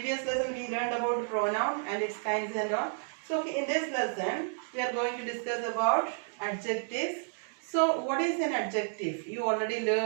lesson we learned about pronoun and its kinds and all. So in this lesson we are going to discuss about adjectives. So what is an adjective? You already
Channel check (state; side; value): silent; left; digital silence